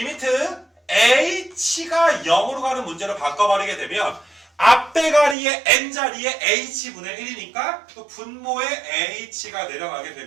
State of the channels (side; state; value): left; drops out; at 5.4 s